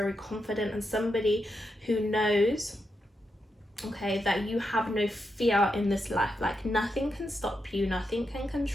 confident and somebody who knows, okay, that you have no fear in this life. Like, nothing can stop you, nothing can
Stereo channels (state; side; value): normal; both; correlation 0.85